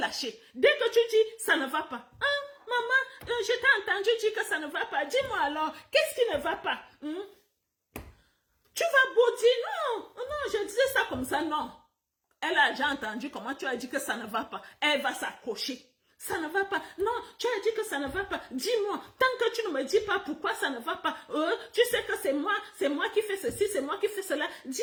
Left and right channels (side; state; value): both; identical; correlation 1.00